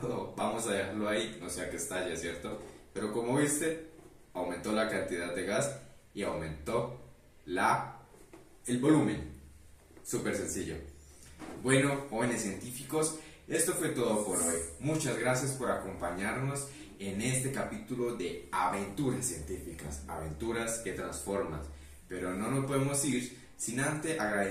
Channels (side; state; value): both; identical; correlation 1.00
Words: Oh, vamos a dejarlo ahí, no sea que estalle, ¿cierto? Pero como viste, aumentó la cantidad de gas y aumentó el volumen. Súper sencillo. Bueno, jóvenes científicos, esto fue todo por hoy. Muchas gracias por acompañarnos en este capítulo de aventuras científicas, aventuras que transforman. Pero no nos podemos ir sin antes